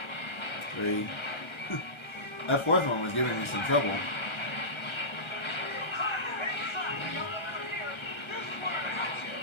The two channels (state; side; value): late; right; 1.3 ms